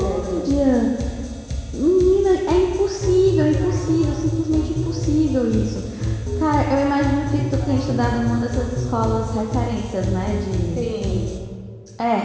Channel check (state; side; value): identical; both; correlation 1.00